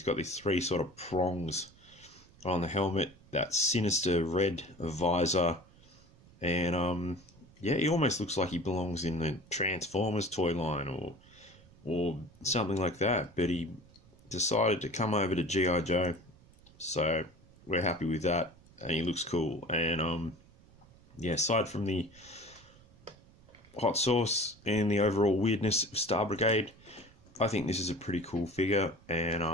got these three sort of prongs on the helmet, that sinister red visor, and yeah, he almost looks like he belongs in the Transformers toy line or something like that. But he decided to come over to G.I.Joe, so we're happy with that, and he looks cool. And yeah, aside from the hot sauce and the overall weirdness of Star Brigade, I think this is a pretty cool figure, and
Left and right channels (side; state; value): right; noise; rumble, 26 dB below the sound